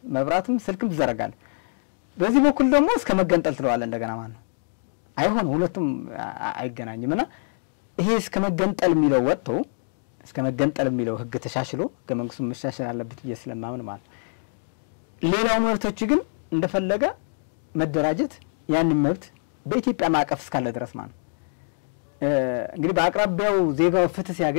መብራትም ስልክም ትዘረጋለህ በዚህ በኩል ደግሞ እስከ መገንጠል ትለዋለህ እንደገና ማለት ነው አይሆን ሁለቱም አይገናኝምና ይሄ እስከ መገንጠል የሚለው ወጥቶ እስከ መገንጠል የሚለው ህግ ተሻሽሎ ከመንግስቱ መሻሻል አለበት ስለማምን ማለት ሌላው መብቶች ግን እንደፈለገ መደራጀት ያንን መብት በኢትዮጵያ ማዕቀፍ እስካለ ድረስ ማለት እንግዲህ በአቅራቢያው ዜጋው ፍትህ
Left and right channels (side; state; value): right; silent; digital silence